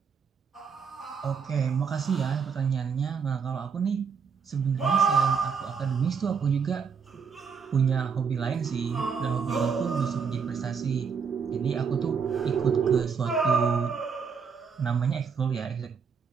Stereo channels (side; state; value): left; quieter; 6.1 dB